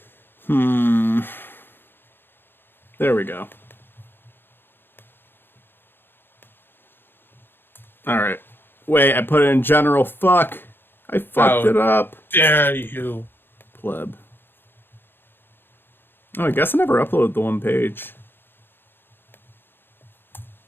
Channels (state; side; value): late; right; 0.10 ms